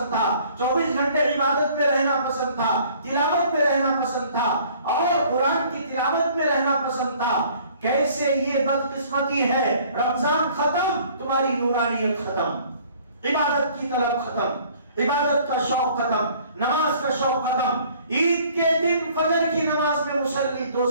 تھا، 24 گھنٹے عبادت میں رہنا پسند تھا، تلاوت میں رہنا پسند تھا، اور قرآن کی تلاوت میں رہنا پسند تھا. کیسے یہ بدقسمتی ہے، رمضان ختم، تمہاری نورانیت ختم، عبادت کی طلب ختم، عبادت کا شوق ختم، نماز کا شوق ختم. عید کے دن فجر کی نماز میں مصلی 2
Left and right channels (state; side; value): inverted; both; correlation -0.55